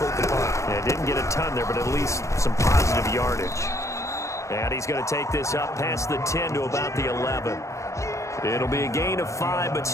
the punt. Yeah, didn't get a ton there, but at least some positive yardage. And he's going to take this up past the 10 to about the 11. It'll be a gain of 5, but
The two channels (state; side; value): late; right; 0.15 ms